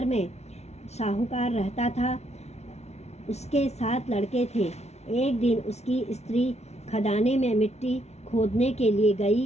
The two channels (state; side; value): late; right; 0.31 ms